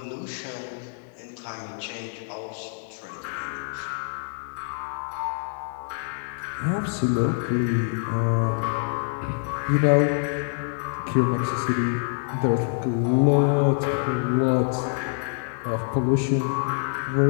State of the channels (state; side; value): silent; right; 61 dB below the other